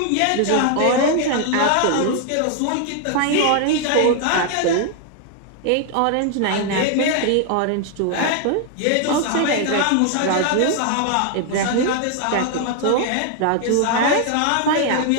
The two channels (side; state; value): both; different; correlation 0.00